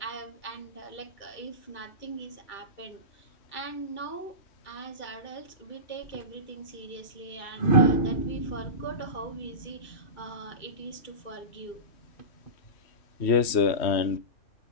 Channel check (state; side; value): late; right; 3.1 ms